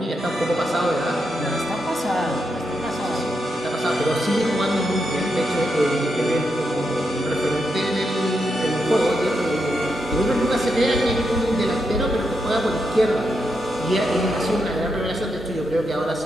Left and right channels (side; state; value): both; normal; correlation 0.83